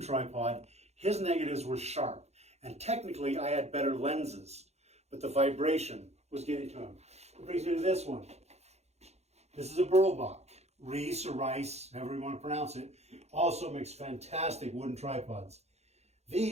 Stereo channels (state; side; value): late; left; 0.31 ms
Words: tripod. His negatives were sharp, and technically I had better lenses, but the vibration was getting to him. It brings me to this one. This is a Berlbach, Reese or Rice, however you want to pronounce it. Also makes fantastic wooden tripods.